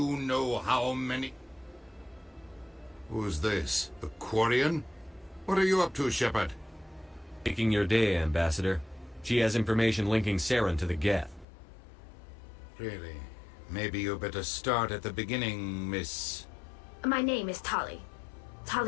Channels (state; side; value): drops out; right; at 11.5 s